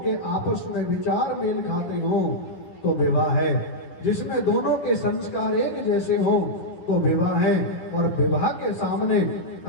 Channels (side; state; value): right; late; 11 ms